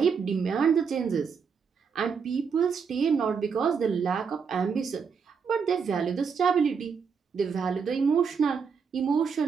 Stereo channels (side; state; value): left; quieter; 6.0 dB